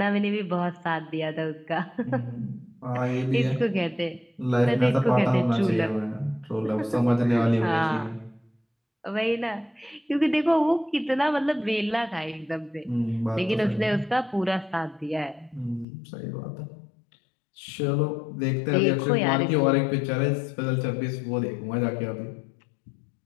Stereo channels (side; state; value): right; drops out; at 15.9 s